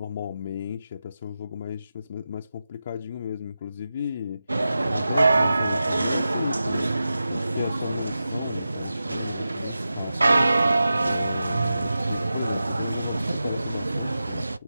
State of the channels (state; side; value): inverted; both; correlation -0.92